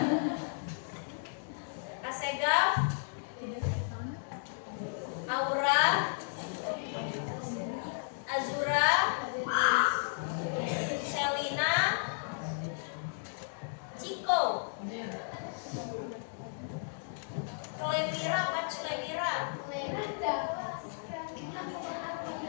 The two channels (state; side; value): silent; right; digital silence